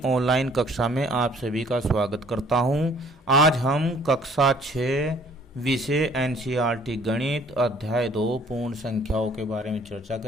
ऑनलाइन कक्षा में आप सभी का स्वागत करता हूं। आज हम कक्षा 6 विषय एनसीईआरटी गणित अध्याय 2 पूर्ण संख्याओं के बारे में चर्चा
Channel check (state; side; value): normal; both; correlation 0.57